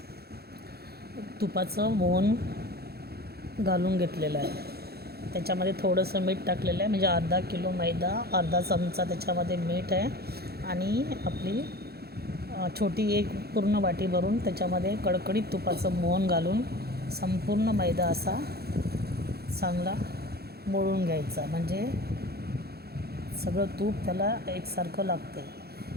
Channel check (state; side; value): late; left; 0.46 ms